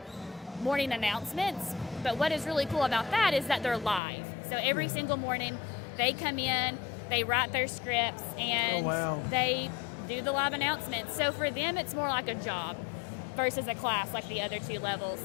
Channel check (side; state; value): right; drops out; at 4.0 s